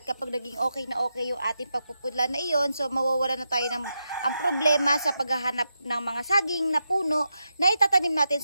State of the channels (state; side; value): inverted; both; correlation -0.87